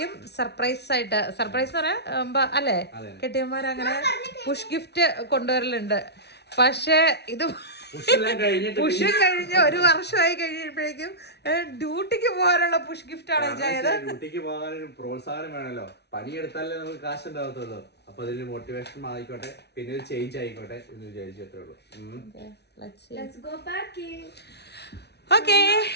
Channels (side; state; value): right; late; 0.49 ms